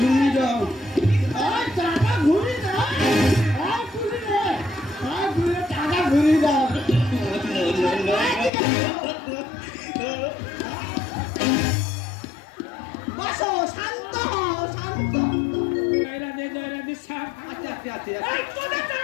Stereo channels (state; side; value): drops out; right; at 8.5 s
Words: দাও, টাকা ঘুরিয়ে দাও, টাকা ঘুরিয়ে দাও। বসো, শান্ত হও, শান্ত। জয় রাধে শ্যাম। তোদের